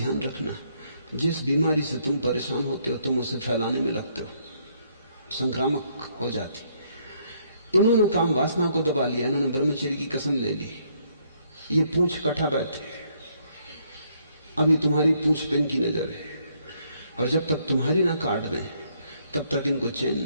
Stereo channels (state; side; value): inverted; both; correlation -0.70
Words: रखना, जिस बीमारी से तुम परेशान होते हो तुम उसे फैलाने में लगते हो, संक्रामक हो जाती। इन्होंने काम वासना को दबा लिया, इन्होंने ब्रह्मचर्य की कसम ले ली, ये पूंछ कटा बैठे। अभी तुम्हारी पूंछ पे इनकी नजर है, और जब तक तुम्हारी ना काट दें तब तक इनको चैन